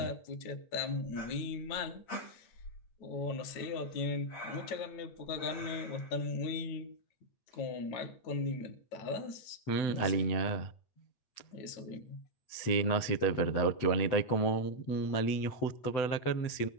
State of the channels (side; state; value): right; late; 7.9 ms